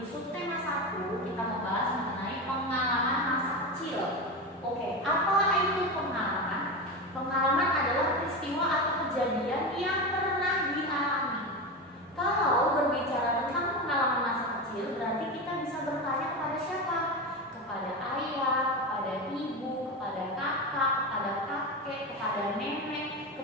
subtema 1 kita membahas mengenai pengalaman masa kecil. Oke, apa itu pengalaman? Pengalaman adalah peristiwa atau kejadian yang pernah dialami. Kalau berbicara tentang pengalaman masa kecil, berarti kita bisa bertanya kepada siapa? Kepada ayah, kepada ibu, kepada kakak, kepada kakek, kepada nenek,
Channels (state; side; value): normal; both; correlation 0.20